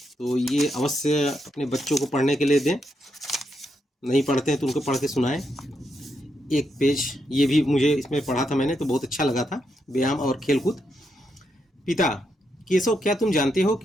तो ये अवश्य अपने बच्चों को पढ़ने के लिए दें, नहीं पढ़ते हैं तो उनको पढ़ के सुनाएं। एक पेज ये भी मुझे इसमें पढ़ा था मैंने, तो बहुत अच्छा लगा था, व्यायाम और खेलकूद। पिता, केशव, क्या तुम जानते हो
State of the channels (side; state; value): both; normal; correlation 0.81